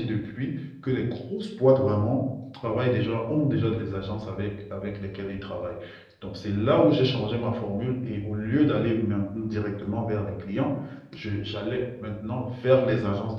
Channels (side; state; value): both; identical; correlation 1.00